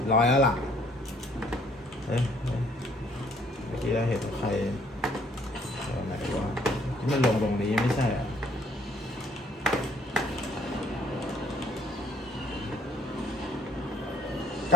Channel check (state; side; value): normal; both; correlation 0.62